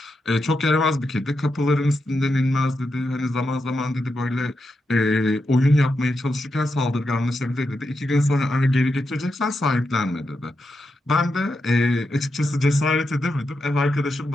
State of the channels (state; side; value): normal; both; correlation 0.86